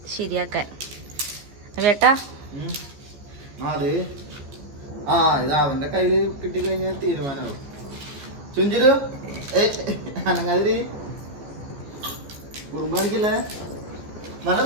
ശരിയാക്കാൻ. വേട്ടാ ഇത് അവന്റെ കയ്യില് കിട്ടിക്കഴിഞ്ഞാൽ തീരുമാനമാവും. ചുഞ്ചിരു അനങ്ങാതിരി കുറുമ്പാണിക്കില്ലേ? നല്ല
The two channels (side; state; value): left; late; 14 ms